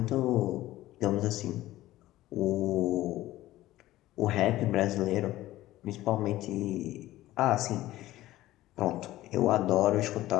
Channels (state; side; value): quieter; right; 15.8 dB